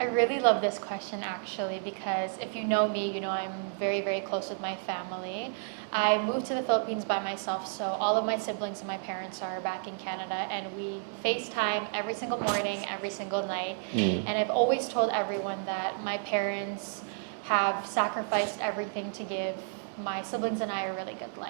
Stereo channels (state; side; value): silent; left; digital silence